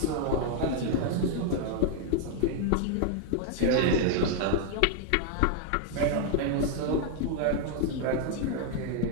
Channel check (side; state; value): both; different; correlation 0.00